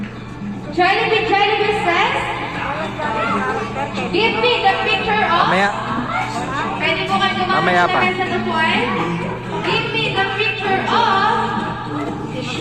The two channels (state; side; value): identical; both; correlation 1.00